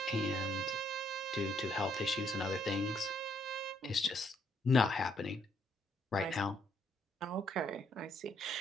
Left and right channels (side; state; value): both; normal; correlation 0.70